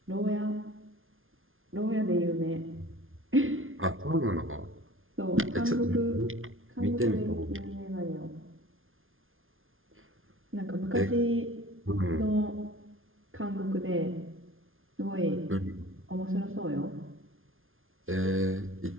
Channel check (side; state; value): left; late; 0.60 ms